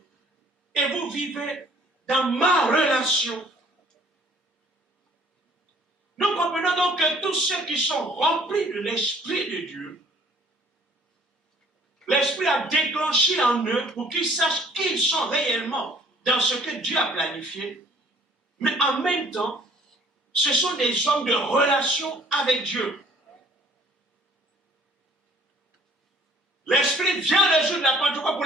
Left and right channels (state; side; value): normal; both; correlation 0.56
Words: et vous vivez dans ma relation. Nous comprenons donc que tous ceux qui sont remplis de l'Esprit de Dieu, l'Esprit a déclenché en eux pour qu'ils sachent qu'ils sont réellement dans ce que Dieu a planifié, mais en même temps, ce sont des hommes de relation avec Dieu. L'Esprit vient le jour de la Pentecôte pour